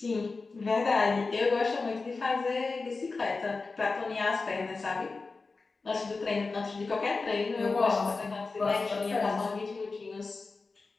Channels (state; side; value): quieter; right; 4.0 dB